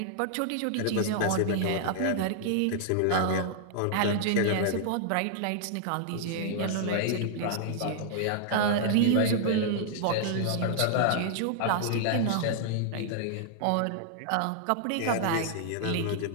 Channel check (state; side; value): different; both; correlation -0.01